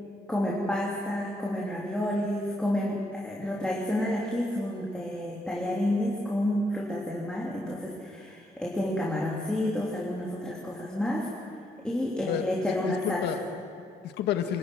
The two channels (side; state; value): both; normal; correlation 0.76